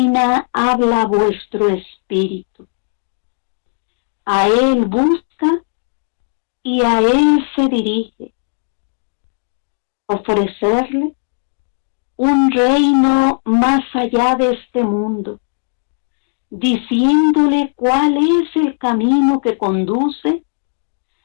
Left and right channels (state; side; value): silent; right; digital silence